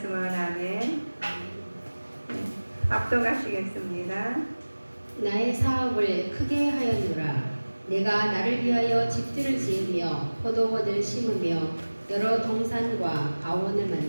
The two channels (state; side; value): inverted; both; correlation -1.00